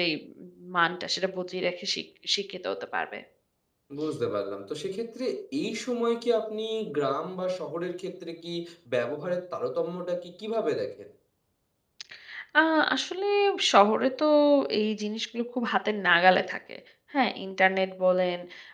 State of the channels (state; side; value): identical; both; correlation 1.00